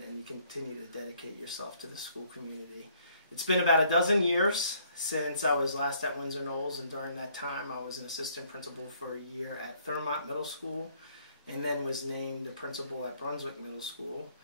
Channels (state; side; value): inverted; both; correlation -0.65